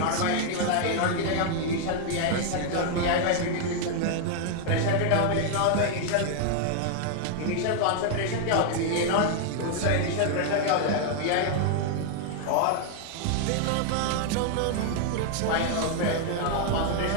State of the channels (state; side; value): different; both; correlation 0.00